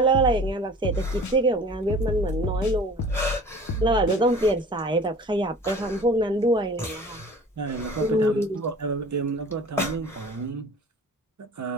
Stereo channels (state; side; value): normal; both; correlation 0.44